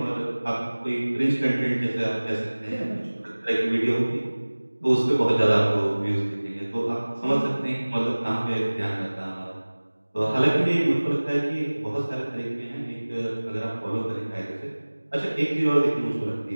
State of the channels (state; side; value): inverted; both; correlation -1.00